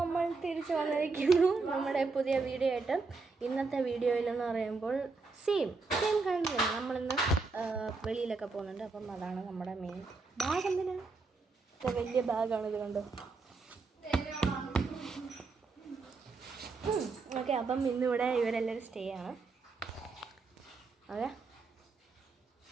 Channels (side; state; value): left; quieter; 4.1 dB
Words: തിരിച്ചു വന്നിരിക്കുന്നു നമ്മുടെ പുതിയ വീഡിയോ ആയിട്ട്. ഇന്നത്തെ വീഡിയോയിലെന്ന് പറയുമ്പോൾ സെയിം കണ്ടില്ല, നമ്മളിന്ന് വെളിയിലൊക്കെ പോകുന്നുണ്ട്. അപ്പം അതാണ് നമ്മുടെ മെയിൻ ബാഗ്. എന്തിനാണ് വലിയ ബാഗാണ്, ഇത് കണ്ടോ. ഓക്കെ, അപ്പം ഇന്നിവിടെ ഇവരെല്ലാവരും സ്റ്റേ ആണ്. അതെ,